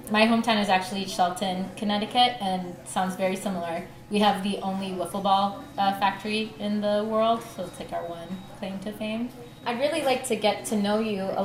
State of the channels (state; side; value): identical; both; correlation 1.00